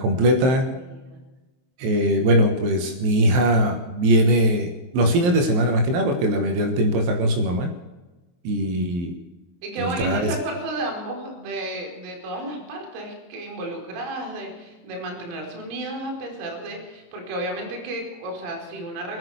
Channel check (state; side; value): late; left; 23 ms